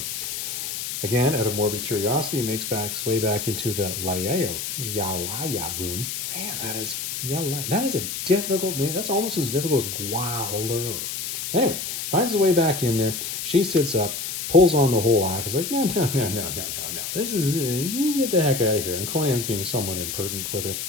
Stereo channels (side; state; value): left; noise; hiss, 5 dB below the sound